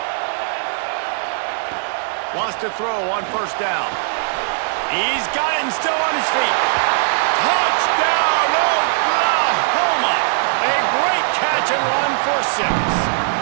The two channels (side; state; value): left; silent; digital silence